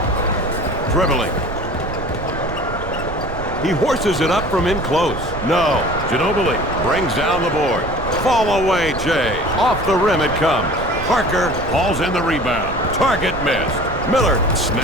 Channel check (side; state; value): right; noise; rumble, 10 dB below the sound